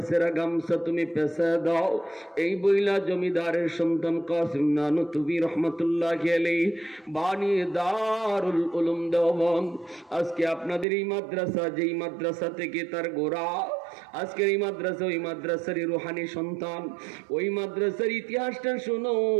সেরা গামছা তুমি পেঁচা দাও। এই বইলা জমিদারের সন্তান কাসিম নানুতুবি রহমতুল্লাহি আলাইহি বানিয়ে দারুল উলুম দেওবন্দ। আজকে আপনাদের এই মাদ্রাসা, যেই মাদ্রাসা থেকে তার গোড়া, আজকের এই মাদ্রাসা ওই মাদ্রাসারই রুহানি সন্তান। ওই মাদ্রাসার ইতিহাসটা শোনো।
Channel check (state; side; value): drops out; left; at 10.9 s